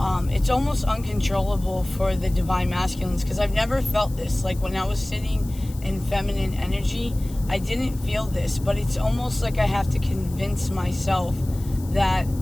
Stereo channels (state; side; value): noise; left; hiss, 20 dB below the sound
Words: It's almost uncontrollable for the divine masculines, because I've never felt this. Like when I was sitting in feminine energy, I didn't feel this, but it's almost like I have to convince myself that